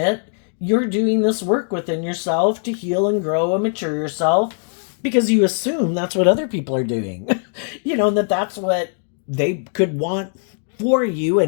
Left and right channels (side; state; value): right; silent; 62 dB below the other